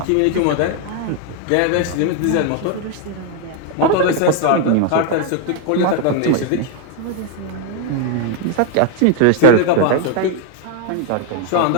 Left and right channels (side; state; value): both; different; correlation 0.01